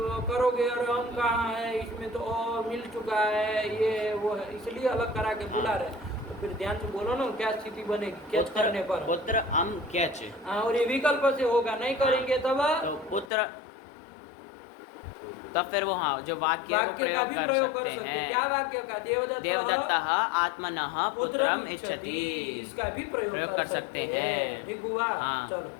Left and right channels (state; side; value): drops out; right; at 13.3 s